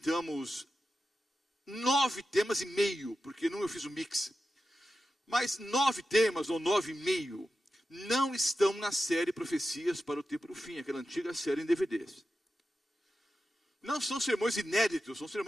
9 temas e meio, porque não eu fiz o mix. Mas 9 temas, ou 9,5, não estão na série Profecias para o Tempo do Fim, aquela antiga série em DVDs. Não são sermões inéditos, são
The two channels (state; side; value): normal; both; correlation 0.91